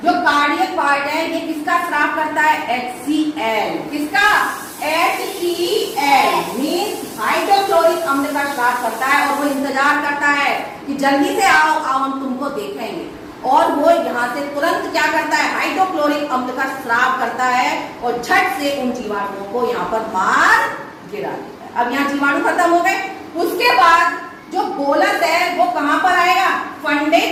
जो कार्डियक पार्ट है ये किसका स्राव करता है? HCl। किसका? HCl मीन्स हाइड्रोक्लोरिक अम्ल का स्राव करता है और वो इंतजार करता है कि जल्दी से आओ हम तुमको देखेंगे। और वो यहाँ से तुरंत क्या करता है? हाइड्रोक्लोरिक अम्ल का स्राव करता है और झट से उन जीवाणुओं को यहाँ पर मार गिरा देता है। अब यहाँ जीवाणु खत्म हो गए। उसके बाद जो बोलस है वो कहाँ पर आएगा?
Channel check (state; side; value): identical; both; correlation 1.00